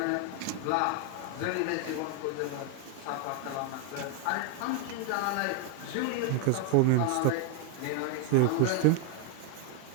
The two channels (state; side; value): different; both; correlation 0.00